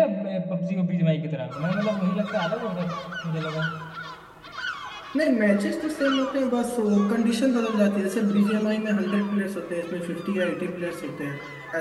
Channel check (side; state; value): both; identical; correlation 1.00